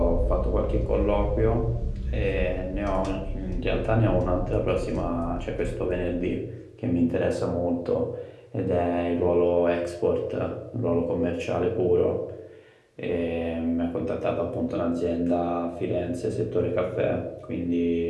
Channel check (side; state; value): both; identical; correlation 1.00